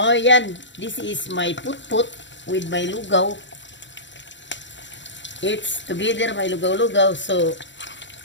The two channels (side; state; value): right; late; 0.53 ms